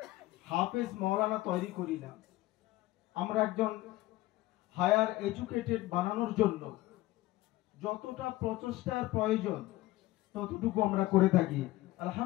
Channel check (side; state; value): right; quieter; 17.5 dB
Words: হাফেজ মাওলানা তৈরি করি না, আমরা একজন হায়ার এডুকেটেড বানানোর জন্য যতটা প্রচেষ্টার প্রয়োজন ততটুকু আমরা করে থাকি।